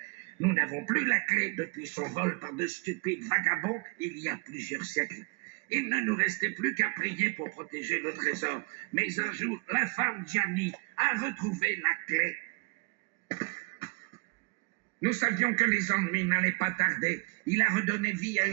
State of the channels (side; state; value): left; quieter; 30.7 dB